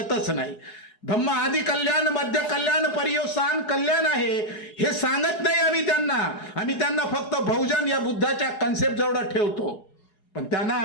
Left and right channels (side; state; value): right; late; 4.8 ms